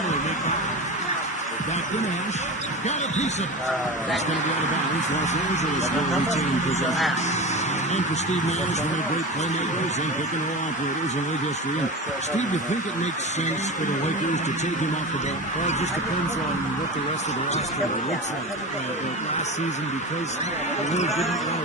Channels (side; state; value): both; normal; correlation 0.27